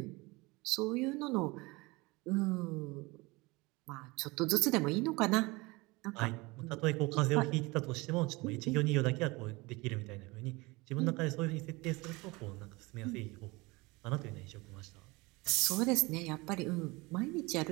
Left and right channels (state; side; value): quieter; left; 23.9 dB